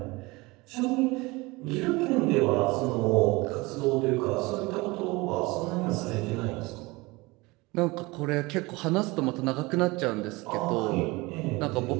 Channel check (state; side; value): quieter; left; 23.3 dB